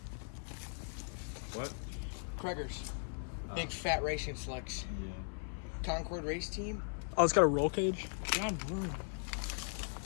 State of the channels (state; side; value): silent; right; 52 dB below the other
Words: What? Craigers. Big fat racing slicks. Yeah. Concord race team. Oh, it's got a roll cage. John Broom.